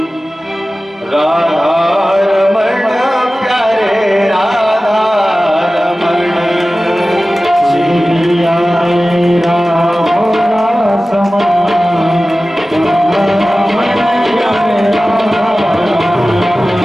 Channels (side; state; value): both; normal; correlation 0.96